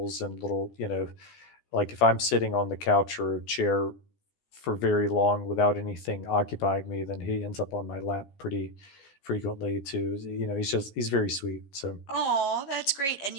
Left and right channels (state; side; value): late; right; 15 ms